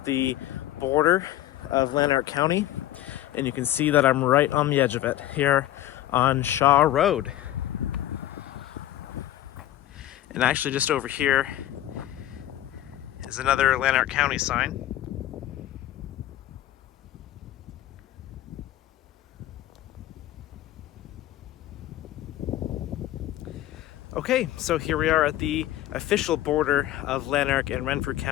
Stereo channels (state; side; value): quieter; right; 13.8 dB